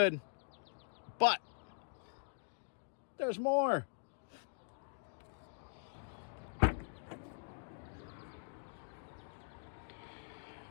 But there's more.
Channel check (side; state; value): right; silent; digital silence